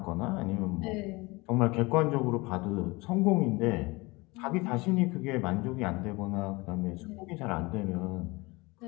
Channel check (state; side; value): quieter; right; 24.1 dB